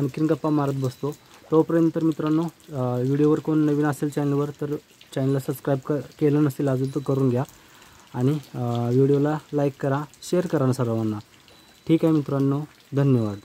गप्पा मारत बसतो. तोपर्यंत तर मित्रांनो, व्हिडिओवर कोण नवीन असेल चॅनलवर तर चॅनलला सबस्क्राईब केलं नसेल अजून तर करून घ्या आणि व्हिडिओला लाईक करा, शेअर करा ना सर्वांना. ठीक आहे मित्रांनो, धन्यवाद.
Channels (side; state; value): both; identical; correlation 1.00